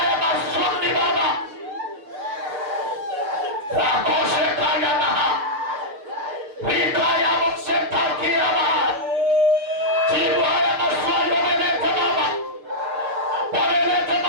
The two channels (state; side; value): late; left; 6.9 ms